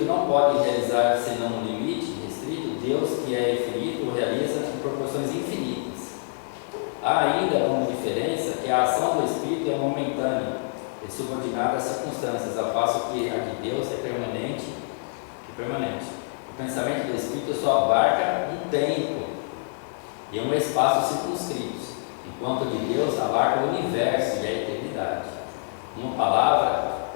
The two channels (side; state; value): right; silent; digital silence